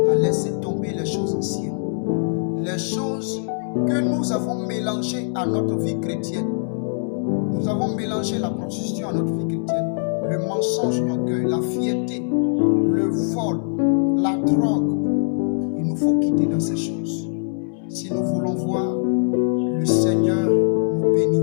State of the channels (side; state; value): right; silent; 63 dB below the other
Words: à laisser tomber les choses anciennes. Les choses que nous avons mélangées à notre vie chrétienne. Nous avons mélangé la prostitution à notre vie chrétienne. Le mensonge, l'orgueil, la fierté, le vol, la drogue. Il nous faut quitter dans ces choses. Si nous voulons voir le Seigneur nous bénir.